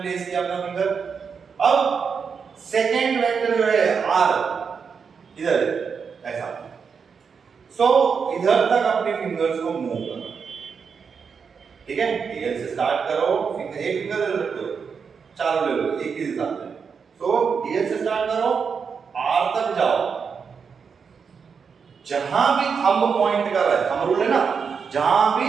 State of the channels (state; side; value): quieter; left; 6.0 dB